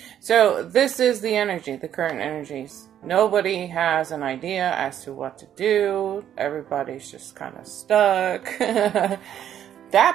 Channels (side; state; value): left; quieter; 10.3 dB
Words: So this is the energy, the current energies. Nobody has an idea as to what to do. Everybody's just kind of stuck.